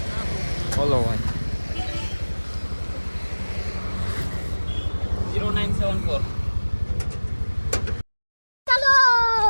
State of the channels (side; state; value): both; inverted; correlation -1.00